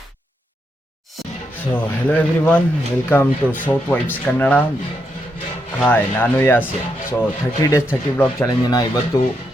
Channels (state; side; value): normal; both; correlation 0.81